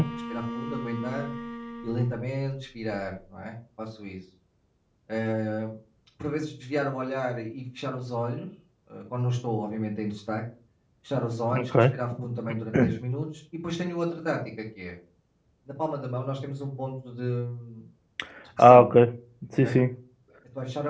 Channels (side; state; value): both; identical; correlation 1.00